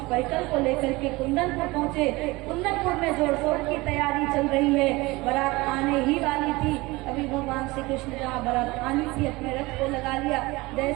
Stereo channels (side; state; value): left; quieter; 22.2 dB